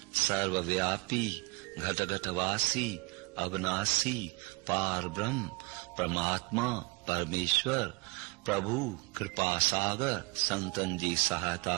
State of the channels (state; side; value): quieter; left; 27.8 dB